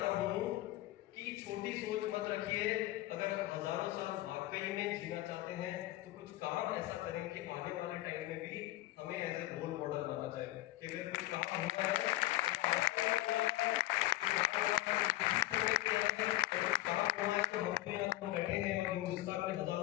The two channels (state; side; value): quieter; right; 16.8 dB